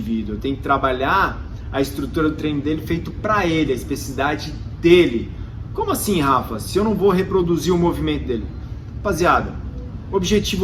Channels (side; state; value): both; identical; correlation 1.00